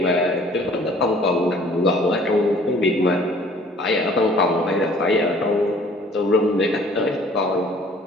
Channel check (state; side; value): normal; both; correlation 0.54